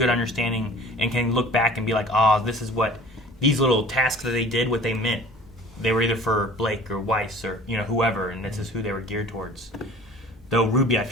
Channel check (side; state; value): both; normal; correlation 0.45